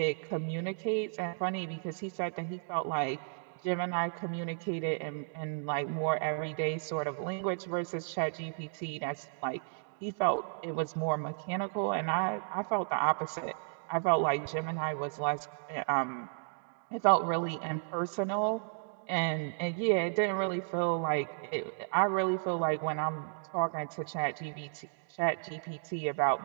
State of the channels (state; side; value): silent; left; digital silence